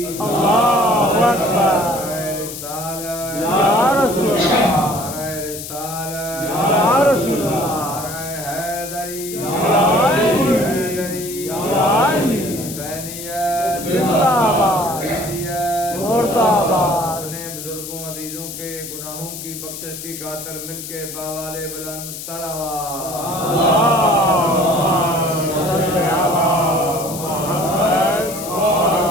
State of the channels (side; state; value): left; noise; hiss, 10 dB below the sound